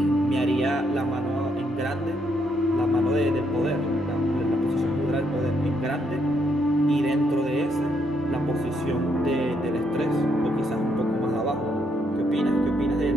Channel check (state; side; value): normal; both; correlation 0.75